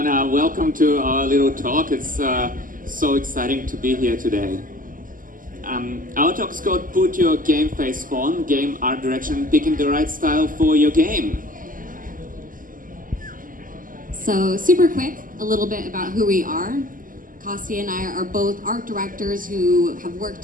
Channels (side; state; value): left; late; 0.40 ms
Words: welcome to our little talk. It's so exciting to be here today. Our talk is called Put Your Game Face On, Game Art Direction, Picking the Right Style for Your Game. So super quick, a little bit about who we are. Kostia and I are both art directors who have worked